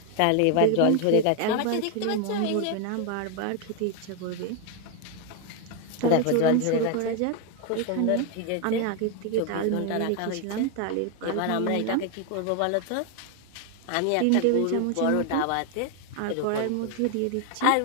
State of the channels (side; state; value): both; different; correlation 0.01